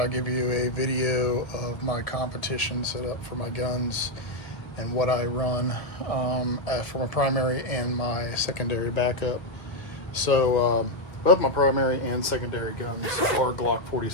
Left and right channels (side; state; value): right; late; 1.8 ms